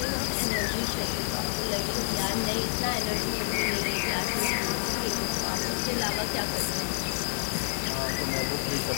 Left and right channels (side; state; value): right; silent; 56 dB below the other